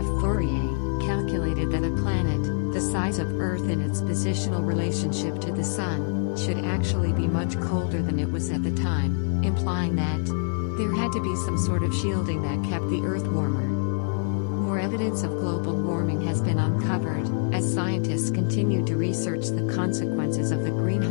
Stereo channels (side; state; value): right; silent; digital silence